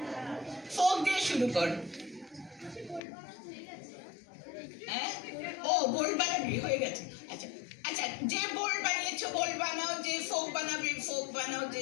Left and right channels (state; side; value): drops out; right; at 3.0 s